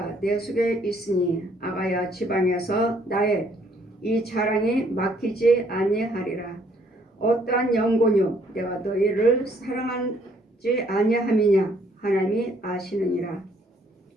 내 속에 있으니 아가야 지방에서 나의 이 자랑이 막히지 아니하리라. 어떠한 영고뇨 내가 너희를 사랑하지 아니함이냐 하나님이 아시느니라.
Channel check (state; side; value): normal; both; correlation 0.65